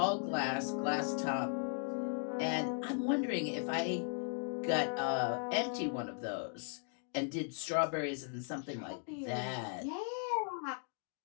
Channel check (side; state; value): right; silent; 53 dB below the other